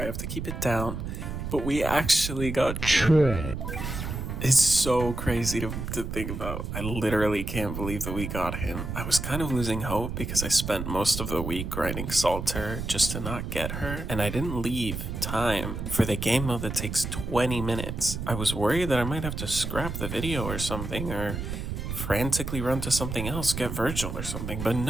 have to keep it down, but we actually got Choi. It's so crazy to think about. I literally can't believe that we got him. I was kind of losing hope because I spent most of the week grinding Salter just to not get her, and I didn't leave time for the game mode that takes 20 minutes. I was worried that I might have to scrap the video or something, or frantically run to something else, get Virgil or something, but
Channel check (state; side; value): noise; right; rumble, 5 dB below the sound